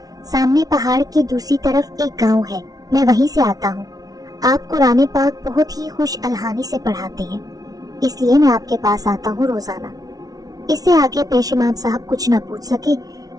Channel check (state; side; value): late; left; 0.18 ms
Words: سامنے پہاڑ کی دوسری طرف ایک گاؤں ہے، میں وہیں سے آتا ہوں۔ آپ قرآن پاک بہت ہی خوش الحانی سے پڑھاتے ہیں، اس لیے میں آپ کے پاس آتا ہوں روزانہ۔ اس سے آگے پیش امام صاحب کچھ نہ پوچھ سکے